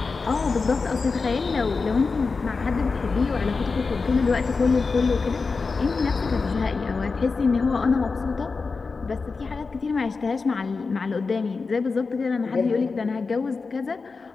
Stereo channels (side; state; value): right; quieter; 4.4 dB